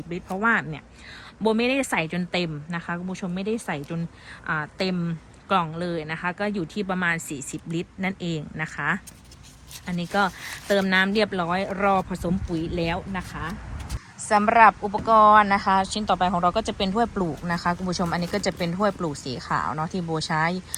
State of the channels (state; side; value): identical; both; correlation 1.00